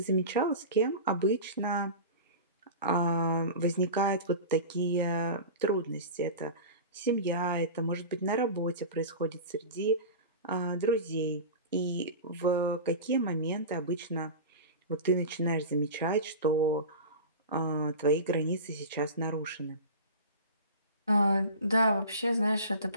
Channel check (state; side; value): inverted; both; correlation -0.30